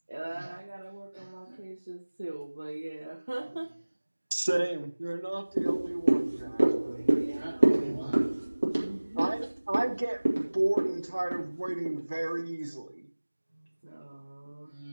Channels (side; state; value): both; inverted; correlation -1.00